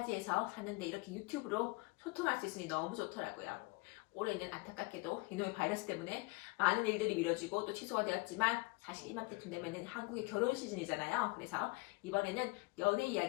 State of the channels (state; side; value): quieter; right; 26.3 dB